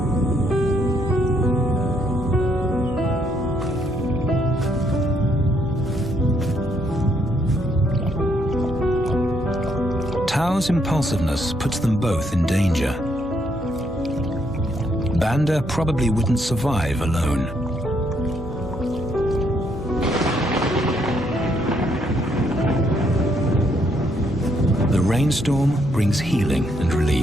Tao's impulsiveness puts them both in danger. Banda probably wouldn't survive alone. The rainstorm brings healing and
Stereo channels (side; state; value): both; normal; correlation 0.72